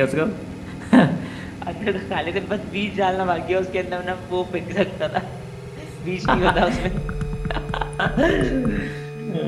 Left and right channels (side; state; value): both; identical; correlation 1.00